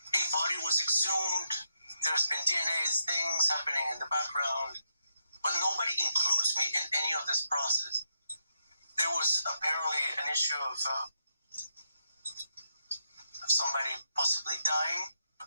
a body was exhumed. There's been DNA things happening in the background, but nobody includes me in any of this process. There was apparently an issue of somebody possibly dying.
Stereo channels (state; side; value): inverted; both; correlation -0.82